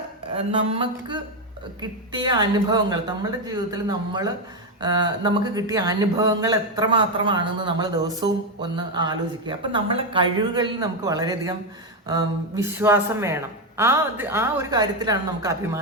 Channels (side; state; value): both; normal; correlation 0.07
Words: നമുക്ക് കിട്ടിയ അനുഭവങ്ങൾ, നമ്മുടെ ജീവിതത്തിൽ നമുക്ക് കിട്ടിയ അനുഭവങ്ങൾ എത്രമാത്രമാണെന്ന് നമ്മൾ ദിവസവും ഒന്ന് ആലോചിക്കുക. അപ്പം നമ്മളെ കഴിവുകളിൽ നമുക്ക് വളരെയധികം വിശ്വാസം വേണം. ആ ഒരു കാര്യത്തിലാണ് നമുക്ക്